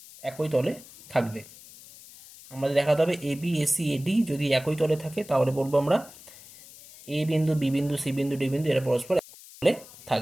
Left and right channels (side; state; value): left; noise; hiss, 20 dB below the sound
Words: একই তলে থাকবে। আমাদের দেখাতে হবে এ বি এসি এডি যদি একই তলে থাকে তাহলে বলবো আমরা এ বিন্দু বি বিন্দু সি বিন্দু ডি বিন্দু এরা পরস্পর একই তলে